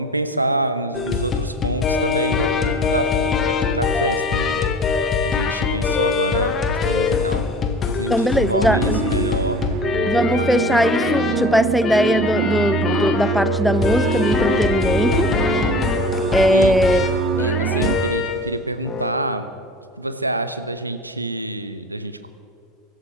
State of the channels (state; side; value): normal; both; correlation 0.41